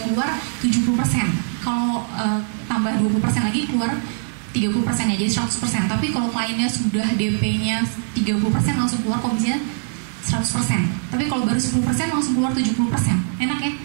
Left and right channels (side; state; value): left; silent; digital silence